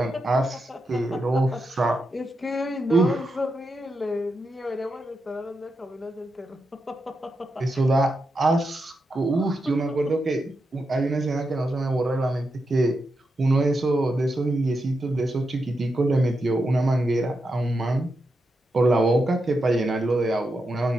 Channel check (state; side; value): normal; both; correlation 0.86